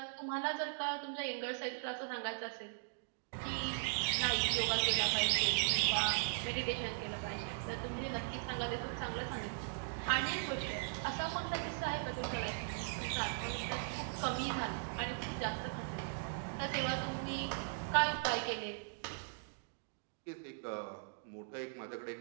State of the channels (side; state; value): left; silent; digital silence